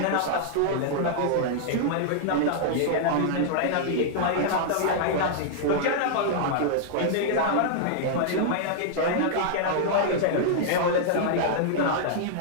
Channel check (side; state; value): both; different; correlation -0.01